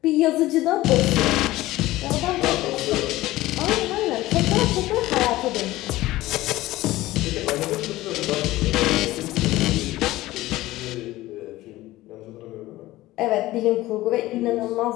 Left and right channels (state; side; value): quieter; right; 17.2 dB